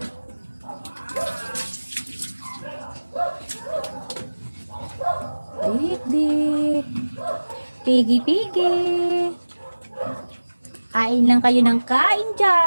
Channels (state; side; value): inverted; both; correlation -1.00